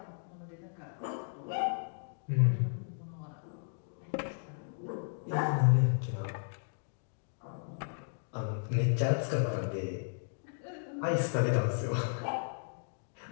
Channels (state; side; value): silent; right; digital silence